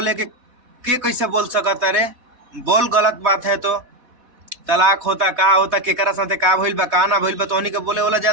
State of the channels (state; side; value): late; left; 4.1 ms